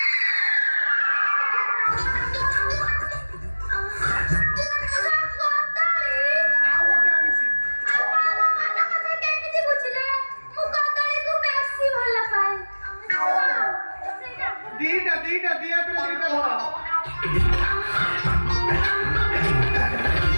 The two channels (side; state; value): both; inverted; correlation -1.00